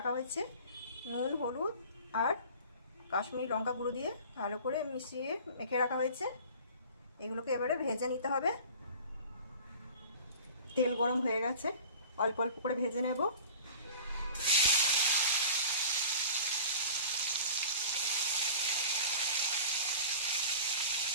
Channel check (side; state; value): both; inverted; correlation -0.40